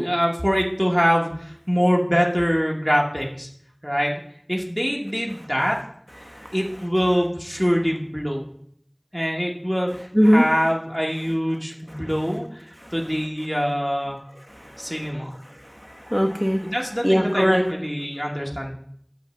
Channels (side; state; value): both; identical; correlation 1.00